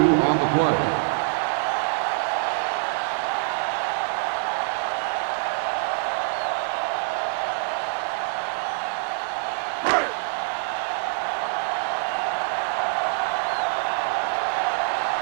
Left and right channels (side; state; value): left; silent; 62 dB below the other